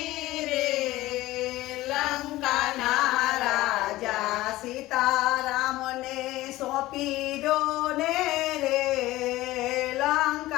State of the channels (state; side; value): quieter; right; 17.3 dB